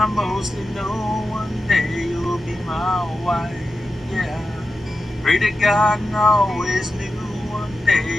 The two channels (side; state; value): both; normal; correlation 0.92